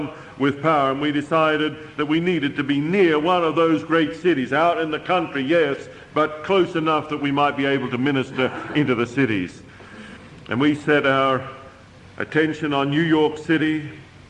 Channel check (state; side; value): identical; both; correlation 1.00